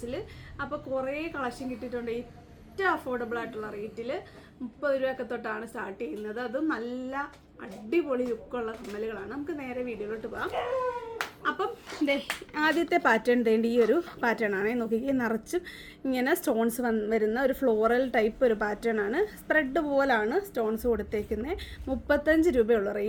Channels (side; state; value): both; identical; correlation 1.00